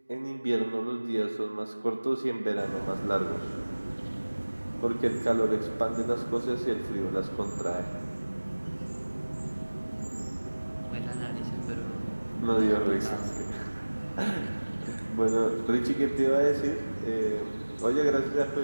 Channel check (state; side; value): inverted; both; correlation -1.00